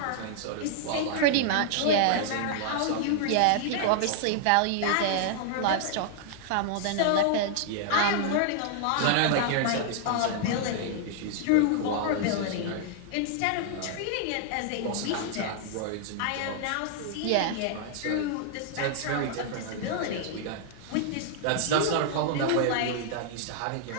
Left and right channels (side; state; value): both; different; correlation -0.01